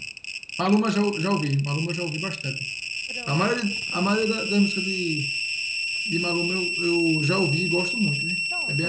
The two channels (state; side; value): identical; both; correlation 1.00